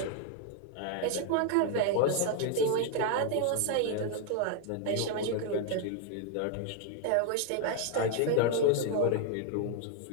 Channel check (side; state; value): both; different; correlation 0.00